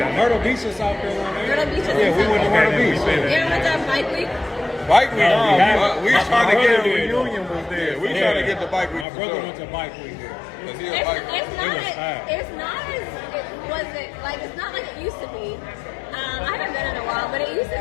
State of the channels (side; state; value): right; drops out; at 9.1 s